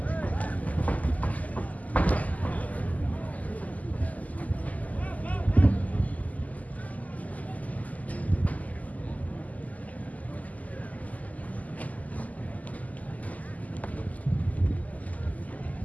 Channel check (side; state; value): right; late; 0.076 ms